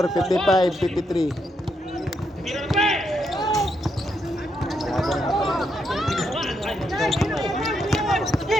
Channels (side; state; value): both; normal; correlation 0.79